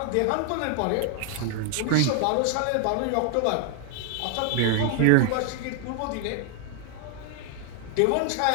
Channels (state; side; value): different; both; correlation 0.00